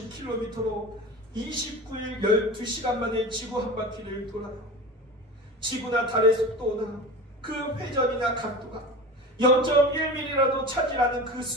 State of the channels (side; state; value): both; normal; correlation 0.32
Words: 29일 12시간 만에 지구 한 바퀴를 돌아요. 지구나 달의 속도나 그 회전이나 각도가 0.1mm라도 차지하는 그